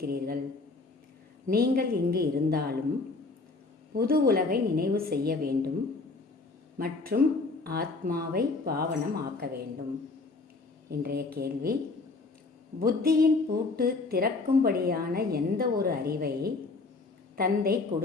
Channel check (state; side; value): quieter; right; 3.7 dB